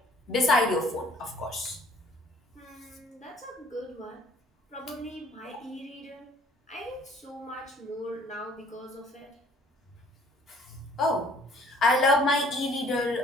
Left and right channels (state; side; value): normal; both; correlation 0.57